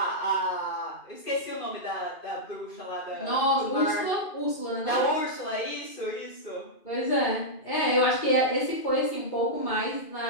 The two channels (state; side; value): late; right; 2.5 ms